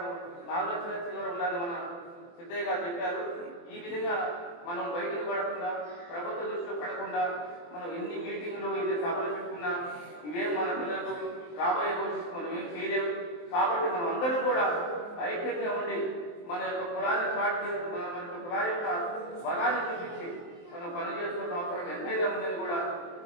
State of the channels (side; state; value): right; late; 23 ms